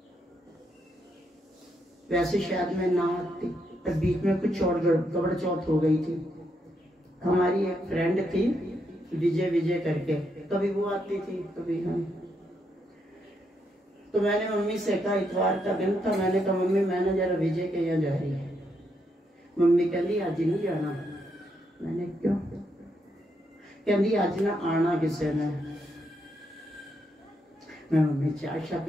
वैसे शायद मैं ना आती, पर बीच में कुछ और गड़बड़ चौथ हो गई थी। हमारी एक फ्रेंड थी विजय करके, कभी वो आती थी कभी हम। तो मैंने मम्मी से कहा, इतवार का दिन था, मैंने कहा मम्मी मैंने जरा विजय के यहाँ जा रही है। मम्मी कहती आज नहीं जाना। मैंने क्यों? कहती आज ना आना किसी ने। मैं मम्मी चाय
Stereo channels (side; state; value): both; normal; correlation 0.79